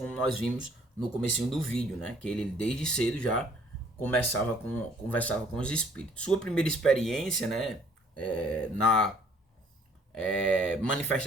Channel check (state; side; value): normal; both; correlation 0.60